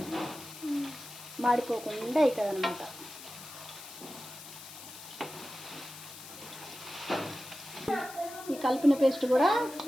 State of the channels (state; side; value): noise; left; hiss, 14 dB below the sound